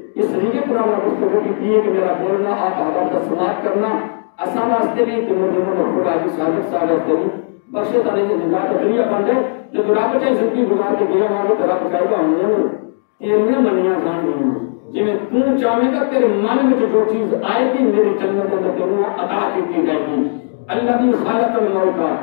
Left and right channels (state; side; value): silent; right; digital silence